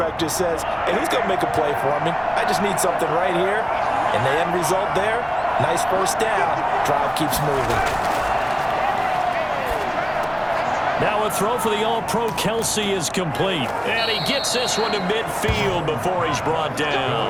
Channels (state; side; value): identical; both; correlation 1.00